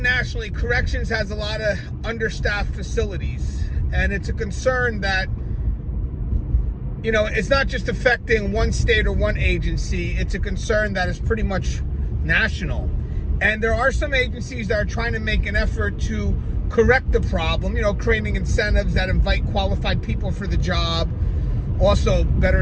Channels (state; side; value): identical; both; correlation 1.00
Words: corrections has a lot of understaffed facilities. And it's a concern that, you know, it's not just affecting one state or one agency. It's a concern that is pretty much national. And there are some agencies that are trying to make an effort to correct the problem, you know, creating incentives that invite qualified people for the job. Also, better